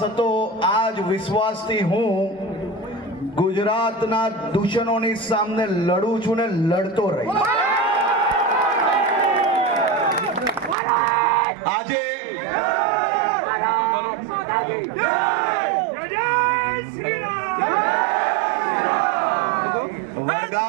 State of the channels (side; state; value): left; drops out; at 10.8 s